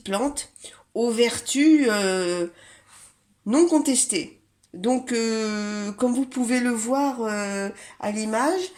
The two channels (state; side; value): identical; both; correlation 1.00